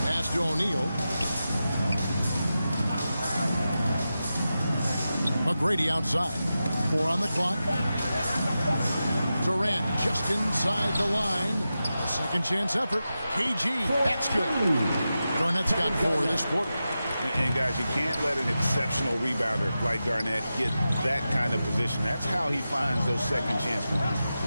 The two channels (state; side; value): inverted; both; correlation -0.92